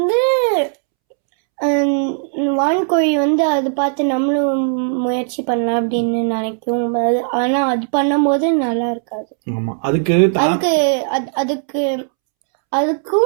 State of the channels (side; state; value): left; silent; 68 dB below the other